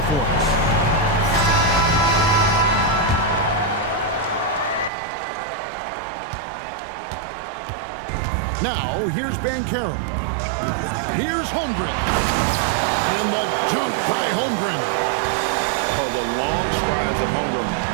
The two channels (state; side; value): drops out; left; at 4.9 s